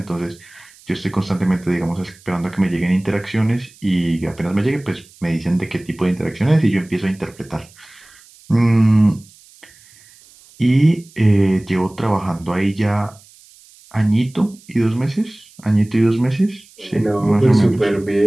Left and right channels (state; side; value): noise; right; hiss, 26 dB below the sound